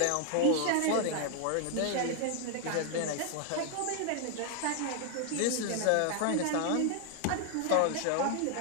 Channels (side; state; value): both; different; correlation 0.00